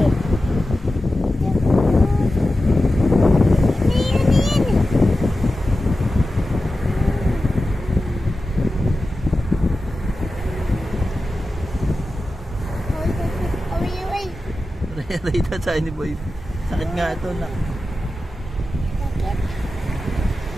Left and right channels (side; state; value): both; normal; correlation 0.93